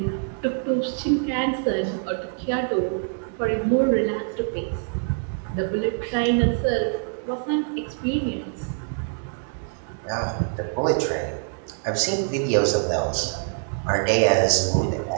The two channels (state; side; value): silent; left; 60 dB below the other